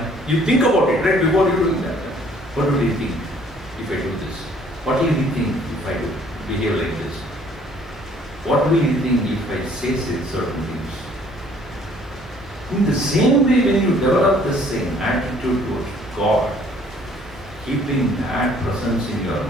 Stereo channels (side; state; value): both; normal; correlation 0.59